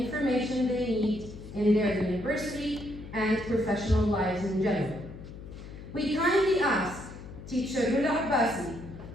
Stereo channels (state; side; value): noise; left; hum, 14 dB below the sound